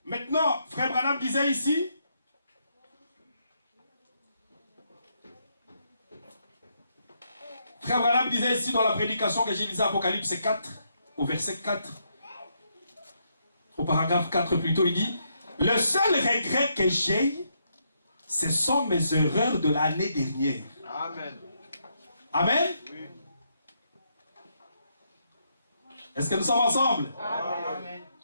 maintenant, frère Branham disait ici, frère Branham disait ici dans la prédication que j'ai lisée Apocalypse 4, au verset 4, au paragraphe 4 plutôt, il dit, le seul regret que j'ai, ce sont mes erreurs de l'année dernière. Amen. Amen. Oui. Est-ce que nous sommes ensemble? Amen.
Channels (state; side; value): inverted; both; correlation -0.77